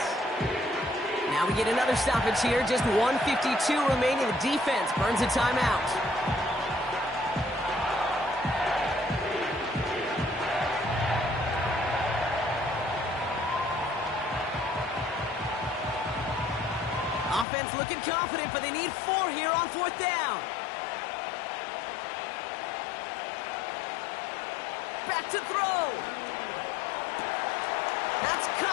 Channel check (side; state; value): right; drops out; at 17.4 s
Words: Now we get another stoppage here. Just 1:52 remaining. The defense burns a timeout. Offense looking confident, but they need 4 here on 4th down. back to throw. That's